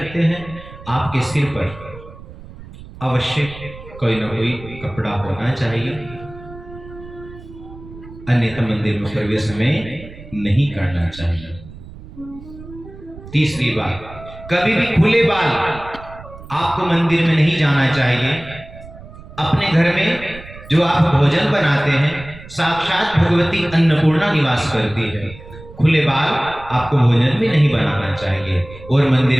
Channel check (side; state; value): right; noise; rumble, 17 dB below the sound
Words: हैं, आपके सिर पर अवश्य कोई ना कोई कपड़ा होना चाहिए, अन्यथा मंदिर में प्रवेश हमें नहीं करना चाहिए। तीसरी बात, कभी भी खुले बाल आपको मंदिर में नहीं जाना चाहिए। अपने घर में जो आप भोजन बनाते हैं, साक्षात भगवती अन्नपूर्णा निवास करती है। खुले बाल आपको भोजन में नहीं बनाना चाहिए और